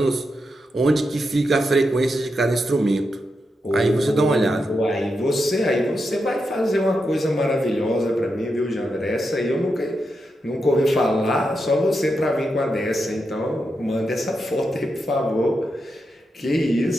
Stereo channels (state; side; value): normal; both; correlation 0.86